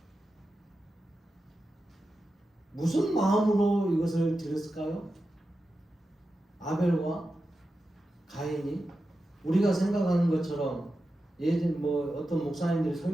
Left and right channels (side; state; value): both; normal; correlation 0.91